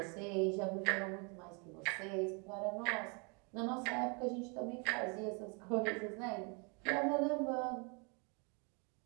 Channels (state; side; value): quieter; left; 33.9 dB